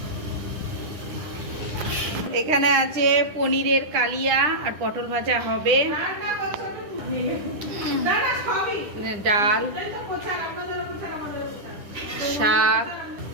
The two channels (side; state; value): left; late; 9.9 ms